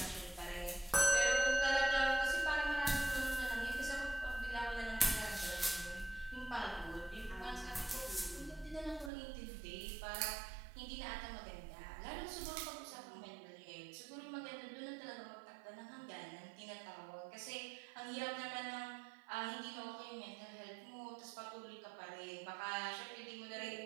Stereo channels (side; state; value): left; drops out; at 9.1 s